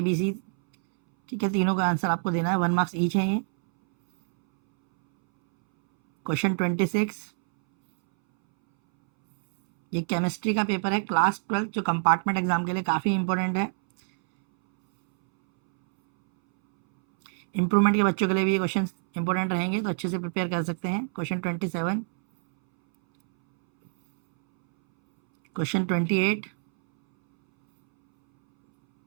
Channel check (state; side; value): silent; left; 61 dB below the other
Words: बी सी, ठीक है, तीनों का आंसर आपको देना है, 1 मार्क्स ईच है ये। क्वेश्चन 26 ये केमिस्ट्री का पेपर है, क्लास 12 जो कंपार्टमेंट एग्जाम के लिए काफ़ी इंपॉर्टेंट है। इम्प्रूवमेंट के बच्चों के लिए भी ये क्वेश्चन इंपॉर्टेंट रहेंगे, तो अच्छे से प्रिपेयर कर सकते हैं। क्वेश्चन 27, क्वेश्चन 28,